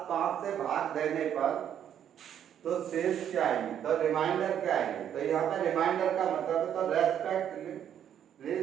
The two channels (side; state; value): left; quieter; 9.6 dB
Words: 5 से भाग देने पर तो शेष क्या आएंगे, तो रिमाइंडर क्या आएंगे। तो यहाँ पे रिमाइंडर का मतलब है, तो रेस्पेक्ट